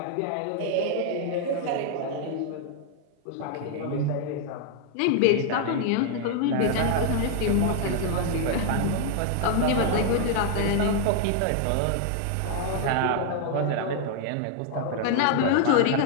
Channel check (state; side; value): different; both; correlation 0.00